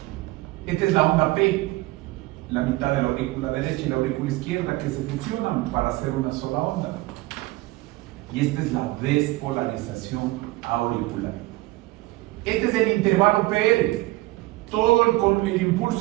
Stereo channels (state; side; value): quieter; left; 20.2 dB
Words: Esta es la onda P, la mitad de la aurícula derecha y la aurícula izquierda que se fusionan para hacer una sola onda. Y esta es la despolarización auricular. Este es el intervalo PR, todo el